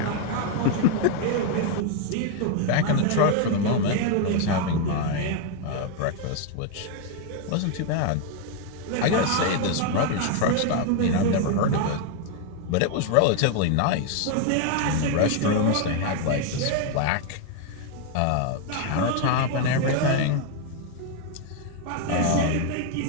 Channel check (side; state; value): both; different; correlation 0.01